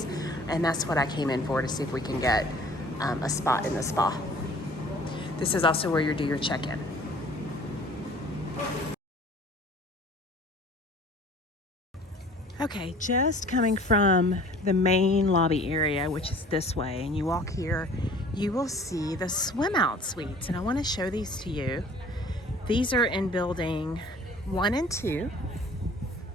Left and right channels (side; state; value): both; normal; correlation 0.50